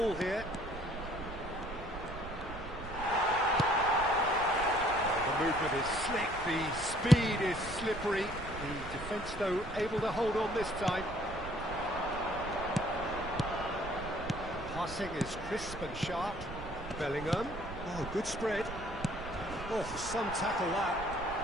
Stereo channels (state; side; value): noise; right; rumble, 11 dB below the sound